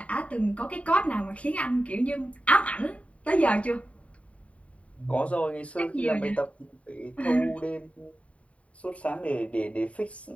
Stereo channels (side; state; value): right; late; 0.065 ms